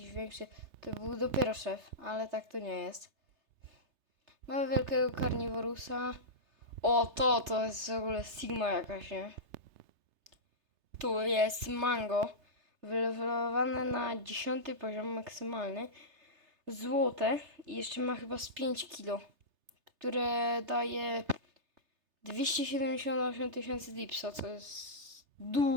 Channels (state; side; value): late; left; 3.3 ms